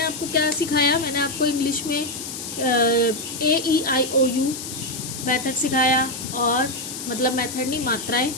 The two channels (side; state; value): left; noise; hiss, 8 dB below the sound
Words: आपको क्या सिखाया, मैंने आपको इंग्लिश में AEIOU मेथड सिखाया, और मतलब मेथड नहीं, मात्राएं।